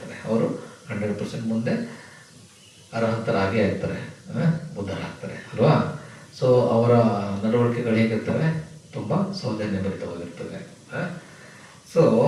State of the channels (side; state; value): both; identical; correlation 1.00